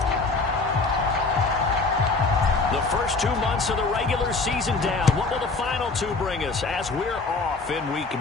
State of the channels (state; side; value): quieter; right; 3.8 dB